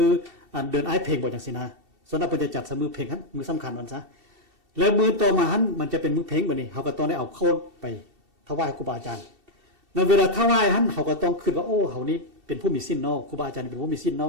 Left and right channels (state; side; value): late; left; 2.7 ms